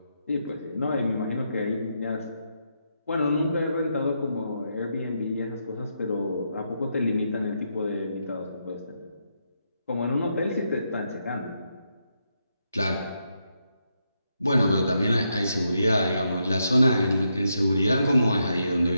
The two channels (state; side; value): inverted; both; correlation -0.81